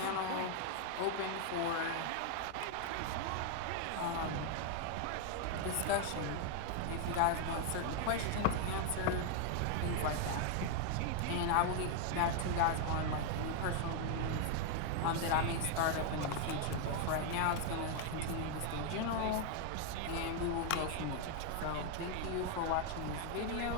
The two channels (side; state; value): both; different; correlation 0.00